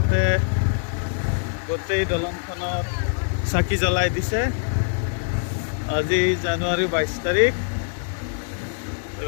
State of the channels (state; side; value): silent; right; digital silence